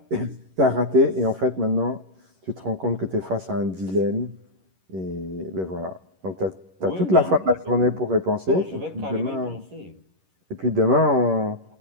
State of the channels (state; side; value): late; left; 11 ms